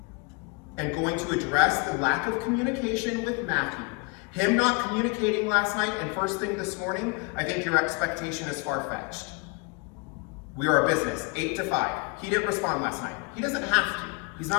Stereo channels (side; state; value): right; quieter; 32.6 dB